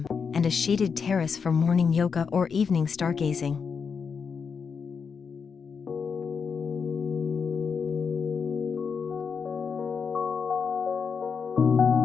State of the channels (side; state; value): right; quieter; 6.0 dB